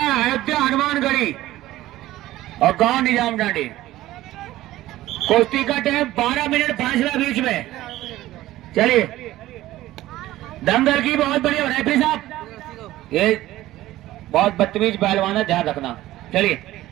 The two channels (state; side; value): quieter; left; 15.7 dB